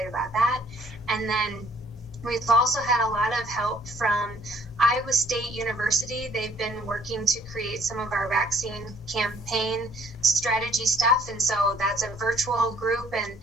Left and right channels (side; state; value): both; normal; correlation 0.61